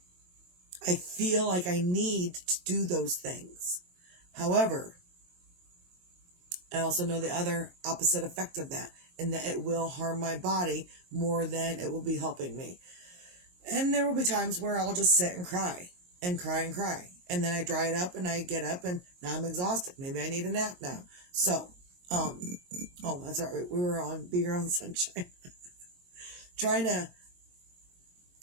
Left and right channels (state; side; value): late; left; 22 ms